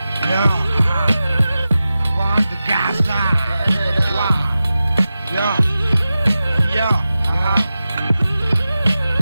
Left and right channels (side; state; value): both; inverted; correlation -0.94